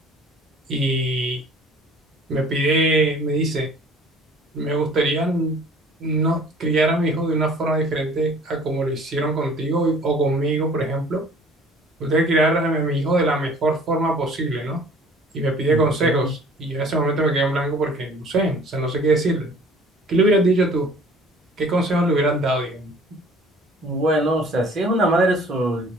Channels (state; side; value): normal; both; correlation 0.51